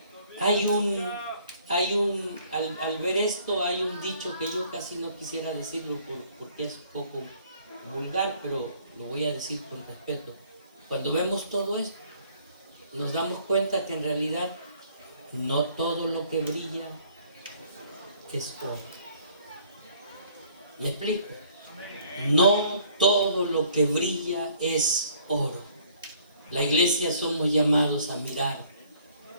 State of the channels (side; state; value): both; inverted; correlation -0.59